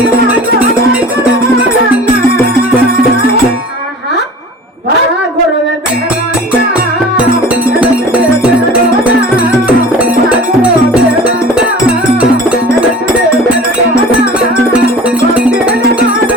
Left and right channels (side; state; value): both; normal; correlation 0.41